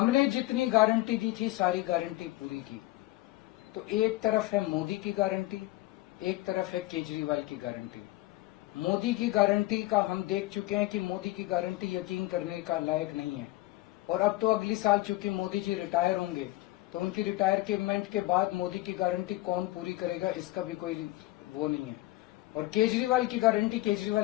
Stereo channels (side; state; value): right; quieter; 18.3 dB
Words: जितनी गारंटी दी थी सारी गारंटी पूरी की। तो एक तरफ है मोदी की गारंटी, एक तरफ है केजरीवाल की गारंटी। मोदी की गारंटी का हम देख चुके हैं कि मोदी की गारंटी यकीन करने का लायक नहीं है। और अब तो अगली साल चूंकि मोदी जी रिटायर होंगे, तो तो उनकी रिटायरमेंट के बाद मोदी की गारंटी कौन पूरी करेगा, इसका भी कोई वो नहीं है। और केजरीवाल की गारंटी,